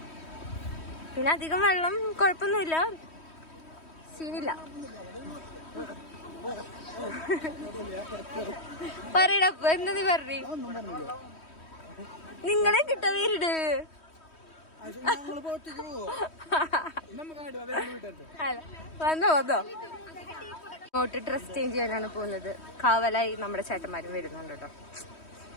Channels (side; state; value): right; late; 3.1 ms